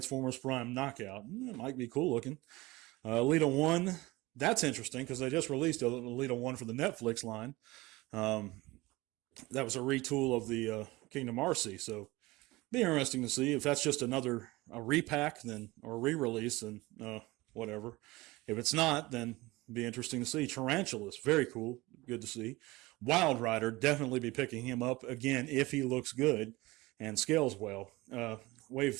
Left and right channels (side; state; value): left; quieter; 21.0 dB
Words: Prime Knockout. It might be cool looking. Elita 1, that's interesting because they just released Elita 1 for the Netflix line. That was a retool of the Kingdom RC, so be interesting to see if that's just a repack or re-release, then whatever. If it's not, then be interesting to see. Tarantulas, very cool, good to see. Wild Rider, definitely be picking him up again if he looks good and scales well.